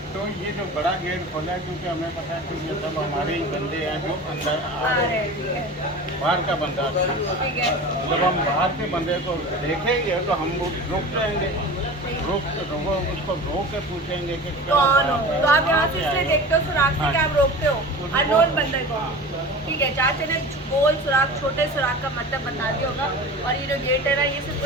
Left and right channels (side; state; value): both; normal; correlation 0.35